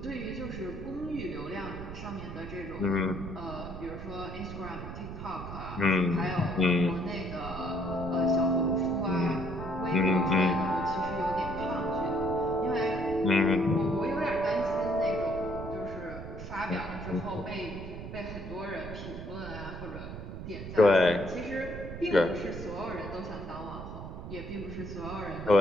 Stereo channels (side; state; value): right; noise; rumble, 9 dB below the sound